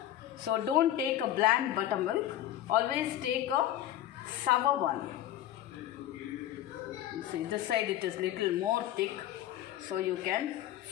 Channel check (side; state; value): right; quieter; 12.5 dB